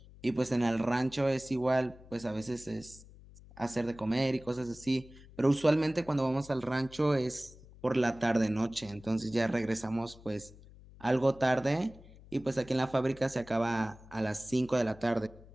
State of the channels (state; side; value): noise; left; hum, 21 dB below the sound